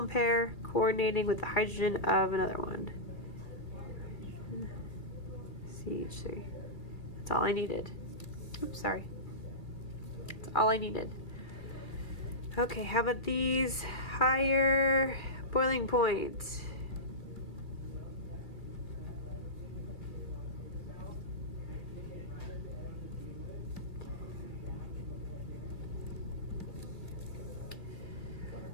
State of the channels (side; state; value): right; late; 2.3 ms